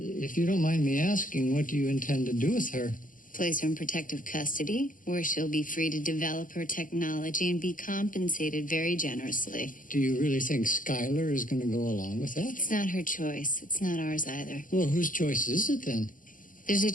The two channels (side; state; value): right; late; 0.39 ms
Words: you don't mind me asking, what do you intend to do with her? Place her in protective custody, where she'll be free to develop her technology and be compensated very generously. Do you really think Skylar is going to go along with that? It's not her choice. It's not ours either. Well, whose choice is it then? There's a